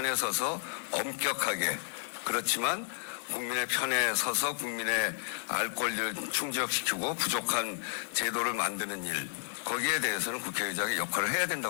서서 엄격하게 그렇지만 국민의 편에 서서 국민의 알 권리를 충족시키고 부족한 제도를 만드는 일 거기에 대해서는 국회의장이 역할을 해야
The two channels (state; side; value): silent; right; digital silence